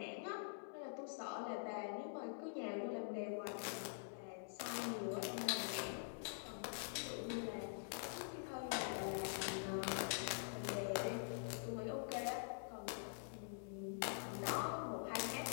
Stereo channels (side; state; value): right; silent; digital silence